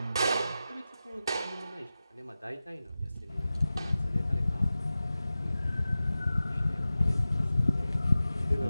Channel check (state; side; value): inverted; both; correlation -0.95